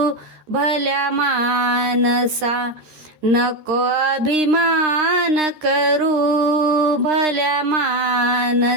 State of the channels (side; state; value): left; late; 13 ms